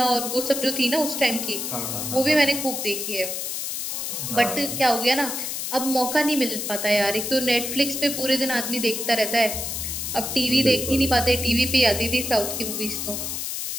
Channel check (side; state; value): left; noise; hiss, 4 dB below the sound